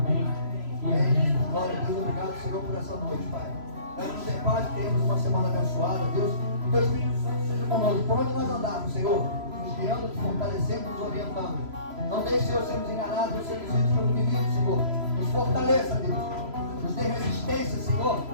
E amém. Glória a Deus, obrigado, Senhor, por essa noite, Pai. Damos em paz, temos uma semana abençoada, Deus. Que o Espírito Santo seja conosco, por onde nós andarmos, Senhor, nos guiando, nos fortalecendo, nos orientando. Não deixe, Senhor, sermos enganados, não sermos vítimas pelo inimigo, Senhor. Nos fortaleça, Deus. Nos dê resistência, Senhor.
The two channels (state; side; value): late; left; 3.0 ms